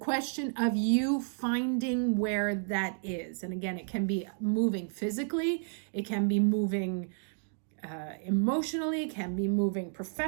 of you finding where that is. And again, it can be moving physically. It can be moving emotionally, can be moving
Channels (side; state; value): left; silent; digital silence